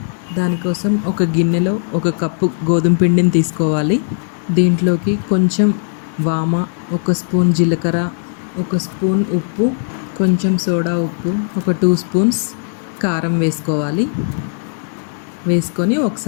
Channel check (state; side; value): silent; right; 68 dB below the other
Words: దానికోసం ఒక గిన్నెలో 1 కప్పు గోధుమ పిండిని తీసుకోవాలి. దీంట్లోకి కొంచెం వామ, 1 స్పూన్ జీలకర్ర, 1 స్పూన్ ఉప్పు, కొంచెం సోడా ఉప్పు, ఒక 2 స్పూన్స్ కారం వేసుకోవాలి. వేసుకొని